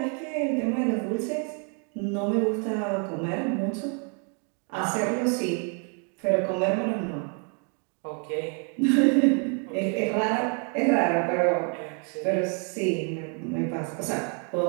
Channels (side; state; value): left; quieter; 39.0 dB